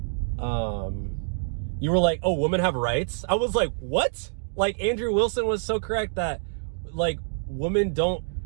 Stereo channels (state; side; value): silent; left; digital silence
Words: oh, women have rights? I was like, what? Like, Andrew Wilson was so correct that, like, women